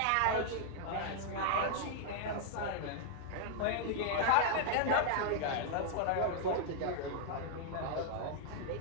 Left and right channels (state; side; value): different; both; correlation -0.01